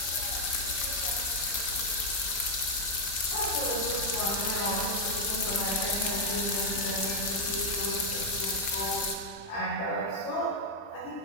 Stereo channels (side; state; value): right; late; 5.0 ms